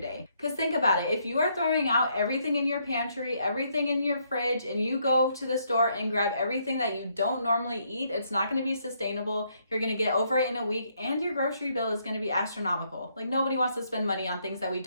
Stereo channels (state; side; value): inverted; both; correlation -0.73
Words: day. Because think about it, if you are throwing out everything in your pantry, everything in your fridge, and you go to the store and grab everything that you don't normally eat, it's not going to be sustainable. You're going to get over it in a week and your grocery bill is going to be astronomical. Like nobody wants to spend money on things that we